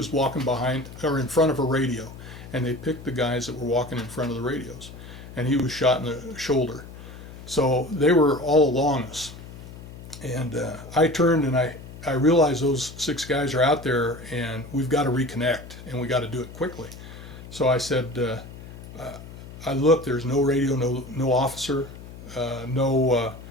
walking behind or in front of a radio, and they picked the guys that were walking in front of the radios, and he was shot in the shoulder. So they were all along us. And I turned and I realized those 6 guys are out there and we've got to reconnect and we got to do it quickly. So I said, I looked, there's no radio, no officer, no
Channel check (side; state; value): left; noise; hum, 15 dB below the sound